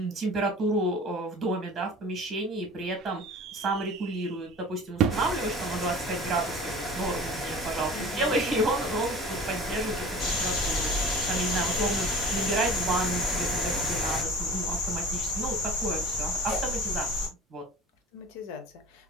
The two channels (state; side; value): normal; both; correlation 0.40